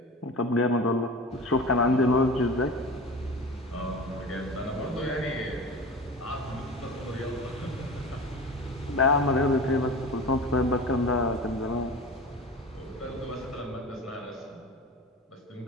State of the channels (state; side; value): normal; both; correlation 0.33